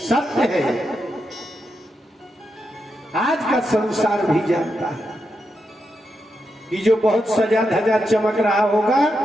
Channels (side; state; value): both; normal; correlation 0.85